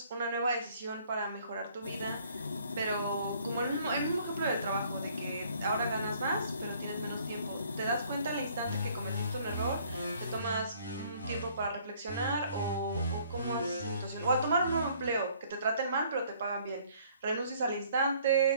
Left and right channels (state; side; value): inverted; both; correlation -0.60